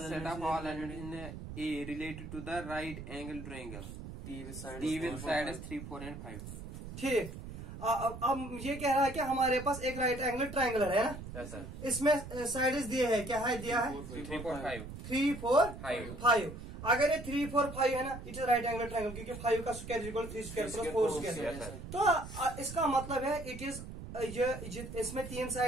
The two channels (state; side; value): noise; right; rumble, 10 dB below the sound